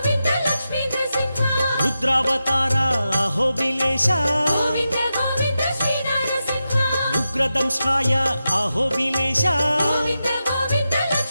Lakshmi Narasimha रुद्रावतार अहोबिलेश Govind Govind Shri Narasimha उग्रदंष्ट्राय अहोबिलेश Govind Govind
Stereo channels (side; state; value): both; inverted; correlation -0.90